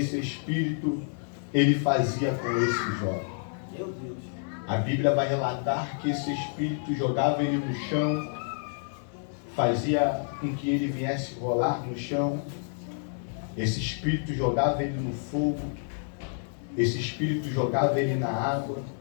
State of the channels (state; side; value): silent; right; 59 dB below the other